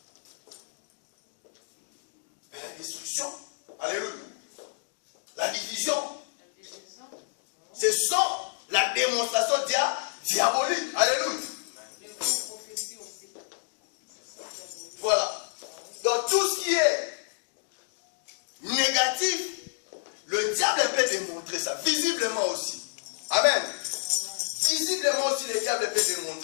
Mais la destruction. Alléluia. La division. Ce sont la démonstration diabolique. Alléluia. Voilà. Donc tout ce qui est négatif, le diable peut démontrer ça. Visiblement aussi. Amen. Visiblement aussi, le diable peut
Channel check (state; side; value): silent; right; digital silence